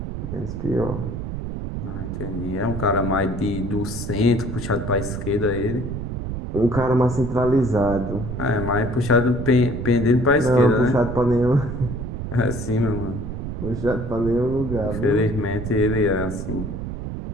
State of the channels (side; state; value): right; noise; rumble, 5 dB below the sound